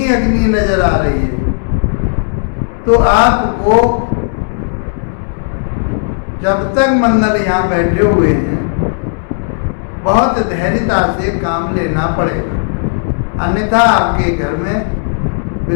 अग्नि नजर आ रही है। तो आपको जब तक मंगल यहाँ बैठे हुए हैं, बहुत धैर्यता से काम लेना पड़ेगा, अन्यथा आपके घर में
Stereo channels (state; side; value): silent; right; digital silence